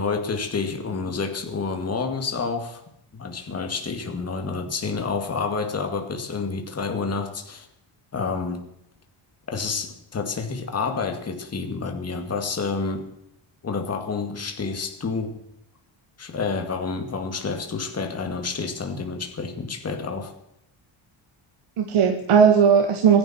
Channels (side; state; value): both; normal; correlation 0.11